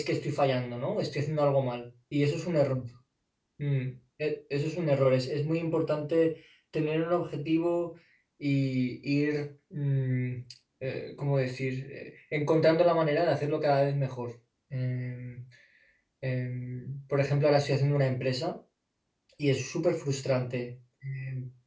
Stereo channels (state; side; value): identical; both; correlation 1.00